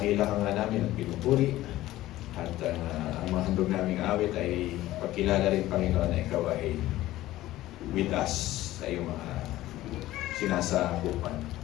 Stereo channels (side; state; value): right; quieter; 15.7 dB